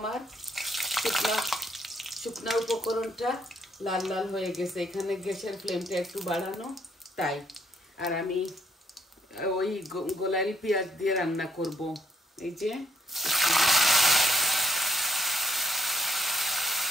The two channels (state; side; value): normal; both; correlation 0.71